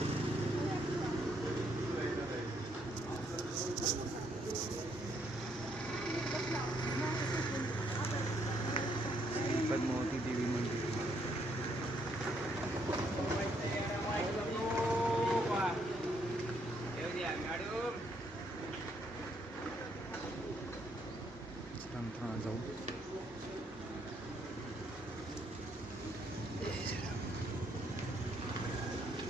पद्मावती देवी मंदिर. मित्रांनो जाऊ.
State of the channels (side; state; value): both; normal; correlation 0.72